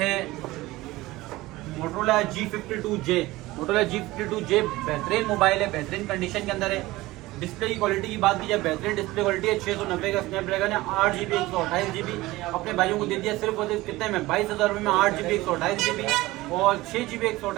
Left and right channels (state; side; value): quieter; left; 18.9 dB